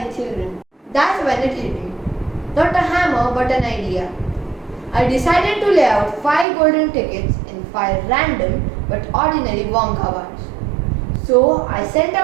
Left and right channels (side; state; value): left; drops out; at 6.5 s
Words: children. That's when it hit me. Not a hammer, but an idea. I decided to lay out 5 golden tickets in 5 random but ordinary Wonka bars. So I sent